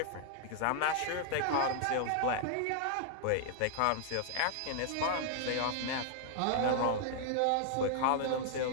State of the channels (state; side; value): different; both; correlation 0.00